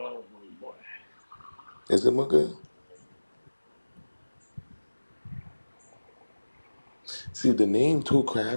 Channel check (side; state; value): both; inverted; correlation -1.00